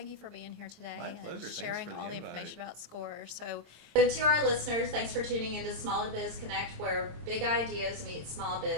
you for being here today My and pleasure. Thanks sharing for the all the invite. information about SCORE. So to our listeners, thanks for tuning into Small Biz Connect, where big ideas meet small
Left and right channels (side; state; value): left; late; 26 ms